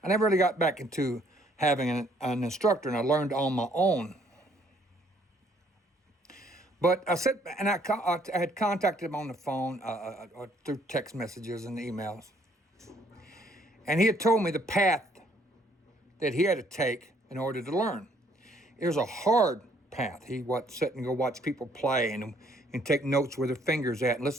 I never really got back into having an instructor, and I learned on my own. But I said, and I had contacted him on the phone through text messages and emails. And he had told me the path that he had to take in order to learn. It was a hard path. He would sit and go watch people play and take notes where their fingers at and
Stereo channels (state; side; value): normal; both; correlation 0.65